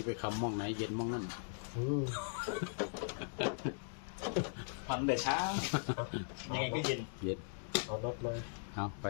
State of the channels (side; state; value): right; silent; digital silence